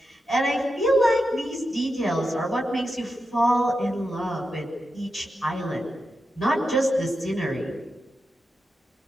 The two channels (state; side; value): normal; both; correlation 0.89